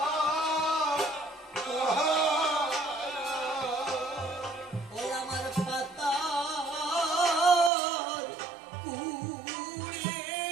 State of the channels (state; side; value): drops out; left; at 7.7 s